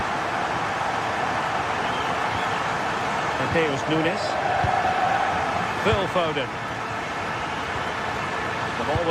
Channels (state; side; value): identical; both; correlation 1.00